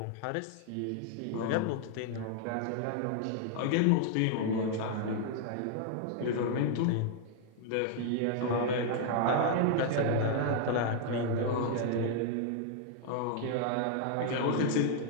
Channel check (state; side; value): different; both; correlation 0.00